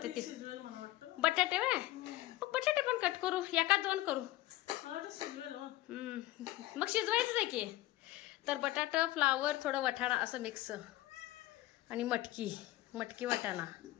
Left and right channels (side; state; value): right; quieter; 16.8 dB